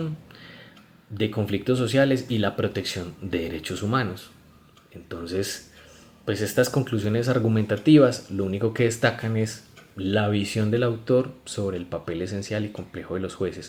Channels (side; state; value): both; identical; correlation 1.00